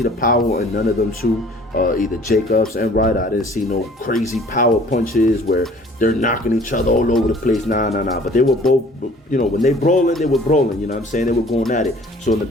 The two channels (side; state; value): both; normal; correlation 0.52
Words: the power in none of them two. either Jacobs and Ryder. I didn't see no crazy power punches where they're knocking each other all over the place. Nah. But they were both, when they brawling, they were brawling. You know what I'm saying? They were going at it. So